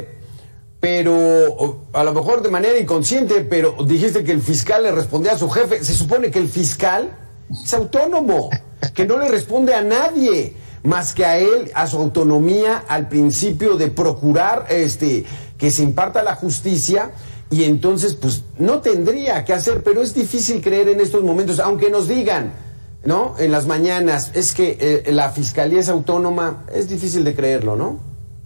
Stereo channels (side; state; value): both; inverted; correlation -1.00